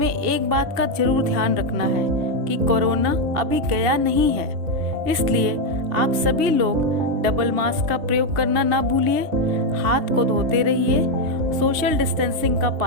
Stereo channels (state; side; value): late; left; 2.7 ms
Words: एक बात का जरूर ध्यान रखना है कि कोरोना अभी गया नहीं है, इसलिए आप सभी लोग डबल मास्क का प्रयोग करना ना भूलिए, हाथ को धोते रहिए, सोशल डिस्टेंसिंग का